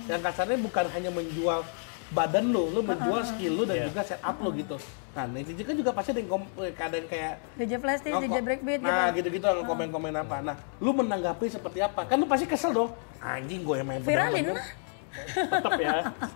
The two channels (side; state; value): right; silent; 58 dB below the other